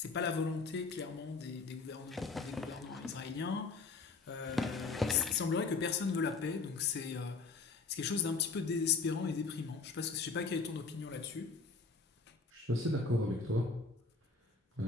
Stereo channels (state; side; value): quieter; right; 4.3 dB